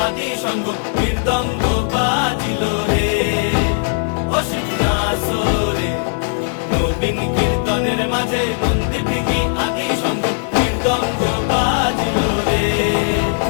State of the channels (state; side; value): silent; right; 67 dB below the other